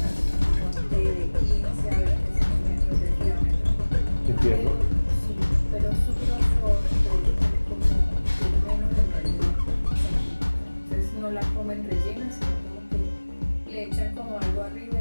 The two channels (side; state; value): both; inverted; correlation -1.00